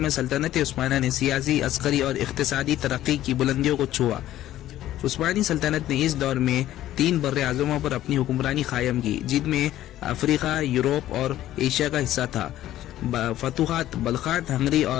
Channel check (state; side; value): quieter; right; 13.5 dB